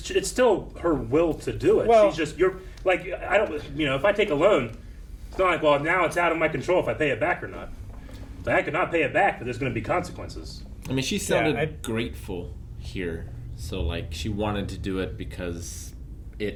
still her will to do it. Well- She's just, you're, like, I don't, you know, if I take a loan, it's not like, well, now it's out of my control if I pay it back or not. Like, I could not pay it back, but there's going to be consequences. I mean, she sounded grateful here. So, like, she wanted to do it because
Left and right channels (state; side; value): identical; both; correlation 1.00